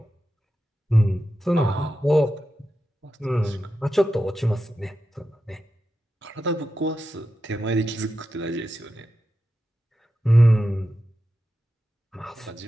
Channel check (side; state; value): both; normal; correlation 0.90